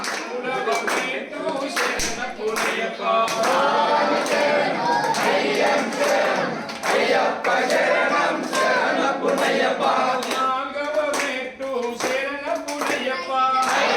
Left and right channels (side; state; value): both; identical; correlation 1.00